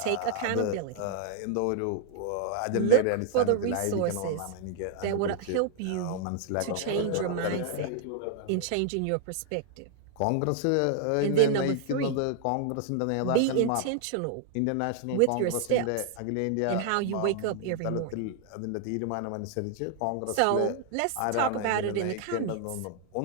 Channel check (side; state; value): both; different; correlation 0.00